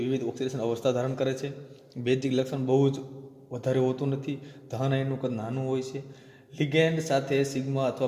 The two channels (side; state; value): both; identical; correlation 1.00